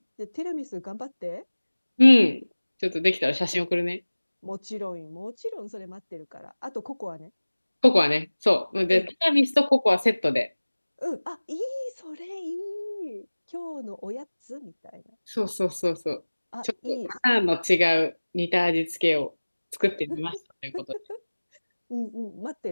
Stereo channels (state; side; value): inverted; both; correlation -1.00